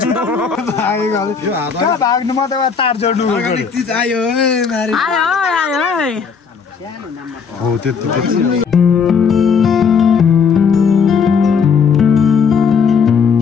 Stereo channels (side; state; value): right; quieter; 6.0 dB